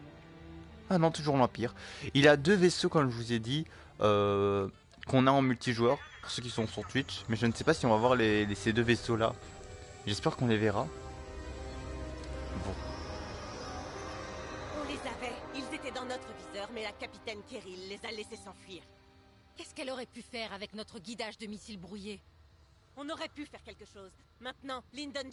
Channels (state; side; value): identical; both; correlation 1.00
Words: Ah non, toujours l'Empire. Il a deux vaisseaux comme je vous ai dit, qu'on a en multijoueur, pour ceux qui sont sur Twitch, mais je ne sais pas si on va voir ces deux vaisseaux là. J'espère qu'on les verra. Bon. On les avait. Ils étaient dans notre viseur, mais la capitaine Kirill les a laissés s'enfuir. Qu'est-ce qu'elle aurait pu faire avec notre guidage de missiles brouillés? On aurait pu faire quelque chose. Maintenant, Lyndon